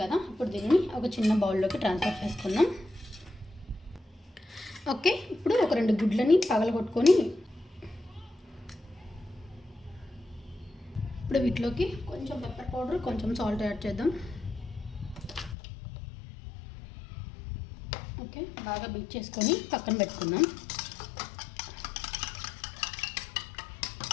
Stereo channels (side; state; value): right; drops out; at 15.6 s